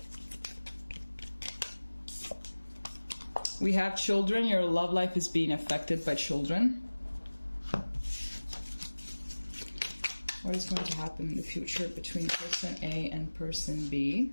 We have children. Your love life is being affected by children. What is going to happen in the future between person A and person B?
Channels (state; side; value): inverted; both; correlation -1.00